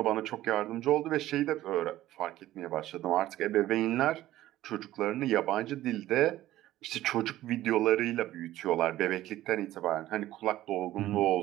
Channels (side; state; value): left; quieter; 14.7 dB